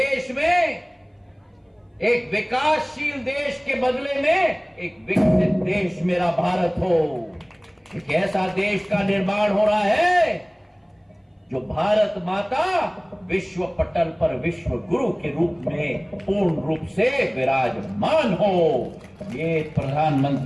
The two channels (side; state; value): both; identical; correlation 1.00